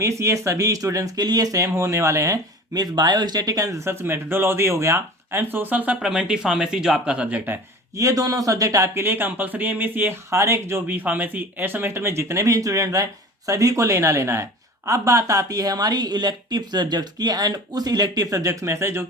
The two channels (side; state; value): both; normal; correlation 0.39